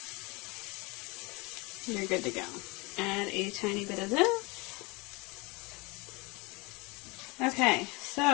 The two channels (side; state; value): right; quieter; 26.7 dB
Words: you're good to go. Add a tiny bit of this. Okay,